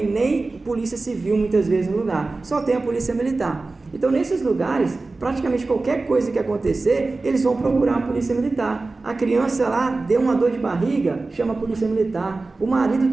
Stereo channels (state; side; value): quieter; left; 3.5 dB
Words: nem polícia civil muitas vezes no lugar, só tem a polícia militar. Então nesses lugares, praticamente qualquer coisa que acontecer, eles vão procurar a polícia militar. A criança lá deu uma dor de barriga, chama a polícia militar. O